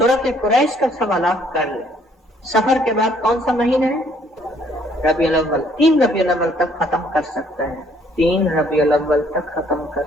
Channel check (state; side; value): normal; both; correlation 0.64